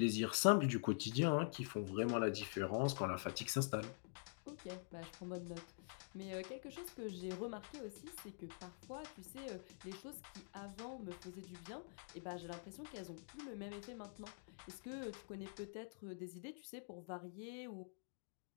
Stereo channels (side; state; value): right; silent; digital silence